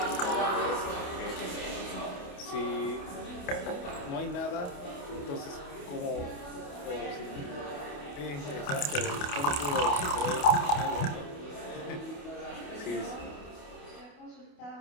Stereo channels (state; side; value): late; right; 28 ms